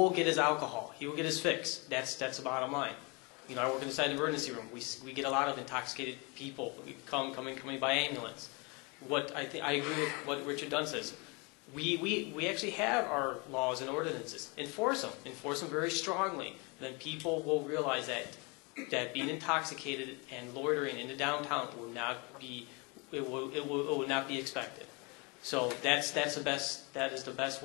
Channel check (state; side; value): quieter; right; 29.7 dB